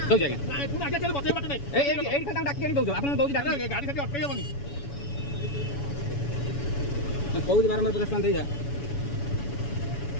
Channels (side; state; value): right; late; 7.1 ms